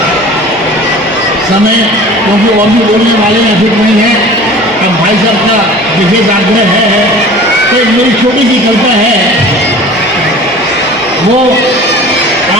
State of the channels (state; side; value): normal; both; correlation 0.42